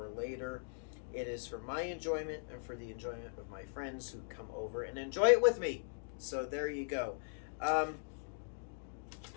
later. It is for my enjoyment and for the enjoyment of my friends who come over and enjoy it with me. So there you go.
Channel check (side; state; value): right; silent; digital silence